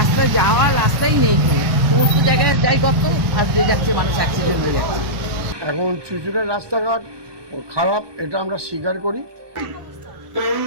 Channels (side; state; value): left; late; 1.2 ms